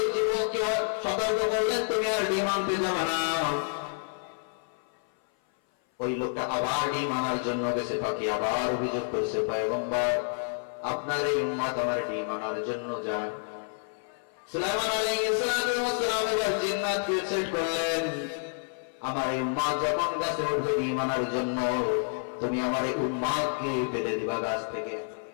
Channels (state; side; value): silent; right; 57 dB below the other